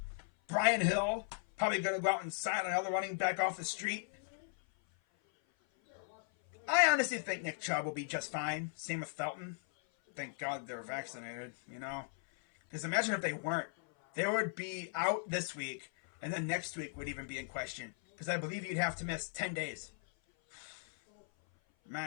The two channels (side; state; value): right; silent; 53 dB below the other